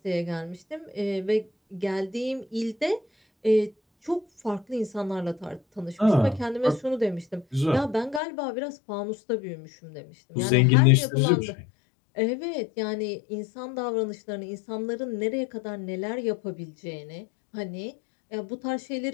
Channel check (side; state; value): right; drops out; at 8.2 s